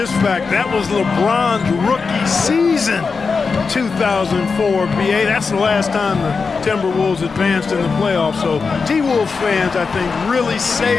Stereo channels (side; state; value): right; quieter; 4.9 dB